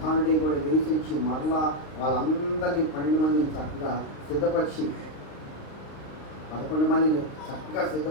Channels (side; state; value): right; late; 35 ms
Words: కూడా లేచించి మరలా వాళ్ళందరినీ 12 మందిని చక్కగా సిద్ధపరిచి 11 మందిని చక్కగా